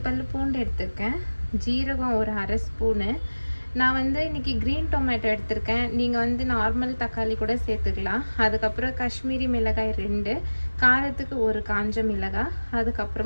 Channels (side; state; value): both; inverted; correlation -1.00